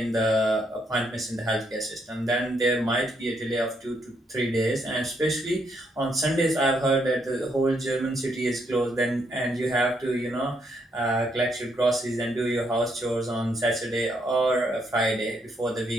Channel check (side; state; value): both; normal; correlation 0.75